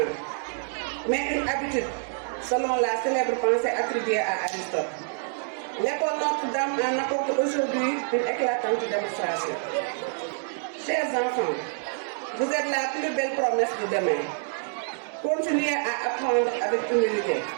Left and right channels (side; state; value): left; silent; digital silence